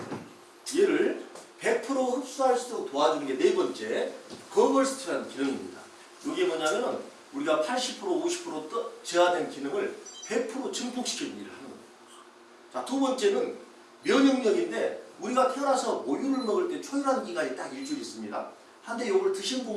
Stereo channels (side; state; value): both; identical; correlation 1.00